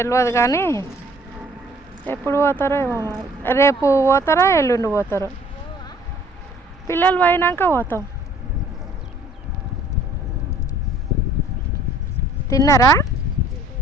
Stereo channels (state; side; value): normal; both; correlation 0.57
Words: కానీ ఎప్పుడు పోతారో ఏమో మరి. రేపు పోతారా ఎల్లుండి పోతారో. పిల్లలు పోయినాక పోతాం. తిన్నారా